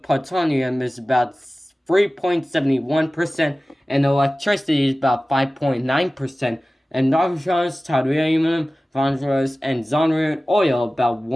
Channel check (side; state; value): both; normal; correlation 0.97